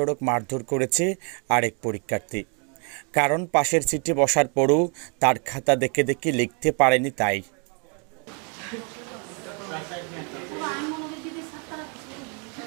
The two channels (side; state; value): left; quieter; 36.6 dB